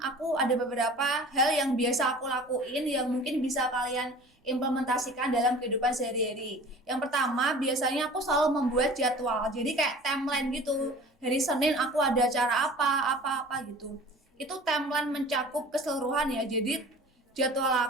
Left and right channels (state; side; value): normal; both; correlation 0.43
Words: ada beberapa hal yang biasa aku lakuin yang mungkin bisa kalian implementasikan dalam kehidupan sehari-hari. Yang pertama, biasanya aku selalu membuat jadwal. Jadi kayak timeline gitu. Hari Senin aku ada acara apa gitu. Itu timeline mencakup keseluruhan ya. Jadi jadwal